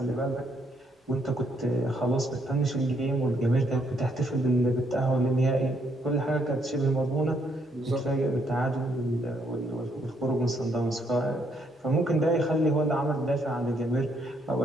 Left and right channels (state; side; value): normal; both; correlation 0.72